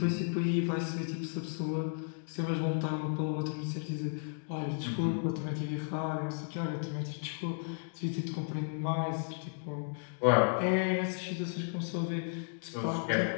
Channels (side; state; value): right; silent; digital silence